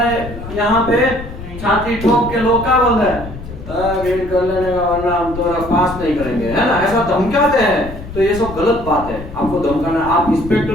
यहाँ पे छाती ठोक के लोग क्या बोल रहे हैं, वेट कर लेने का वरना हम तो पास नहीं करेंगे, है ना, ऐसा धमकाते हैं। तो ये सब गलत बात है, आपको धमकाना। आप इंस्पेक्टर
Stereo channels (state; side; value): noise; left; rumble, 11 dB below the sound